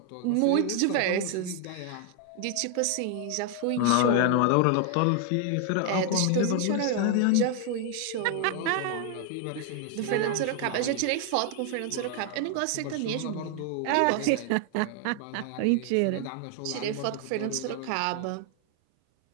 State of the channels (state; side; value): different; both; correlation 0.00